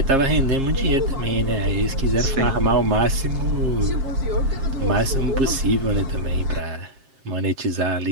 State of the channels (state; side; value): late; left; 7.4 ms